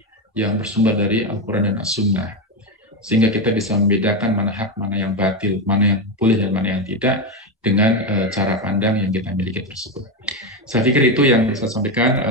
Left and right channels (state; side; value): normal; both; correlation 0.12